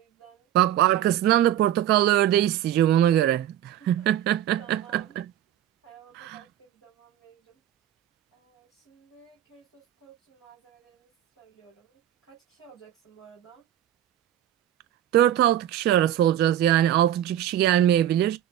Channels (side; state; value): left; quieter; 11.7 dB